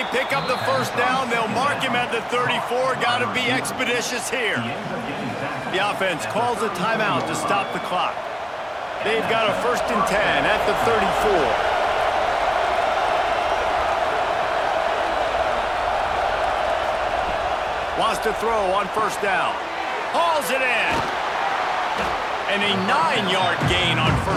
pick up the first down. They'll mark him at the 34. Got to be expeditious here. The offense calls a timeout to stop the clock. They've got a 1st and 10 at the 34. Wants to throw on 1st down. Hauls it in. And a 9-yard gain on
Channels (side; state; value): both; identical; correlation 1.00